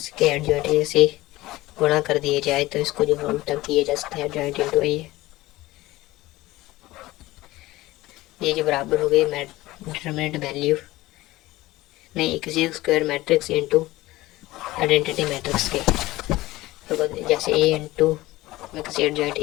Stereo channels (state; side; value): quieter; right; 18.2 dB